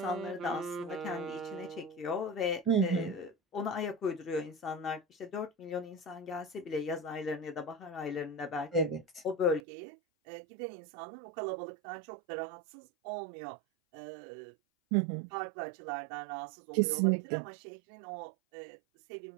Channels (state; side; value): drops out; left; at 9.6 s